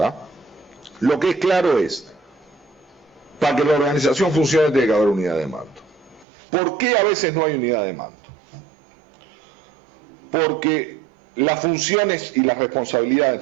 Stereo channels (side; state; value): left; drops out; at 6.2 s